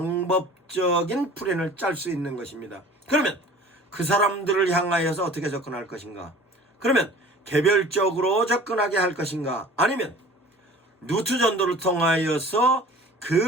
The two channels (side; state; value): both; normal; correlation 0.45